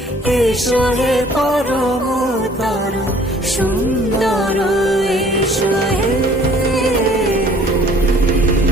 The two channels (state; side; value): normal; both; correlation 0.55